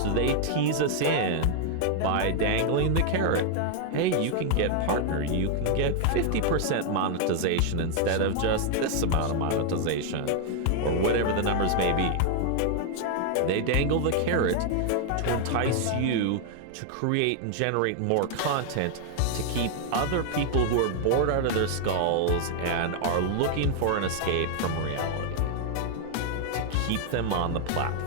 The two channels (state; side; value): different; both; correlation 0.00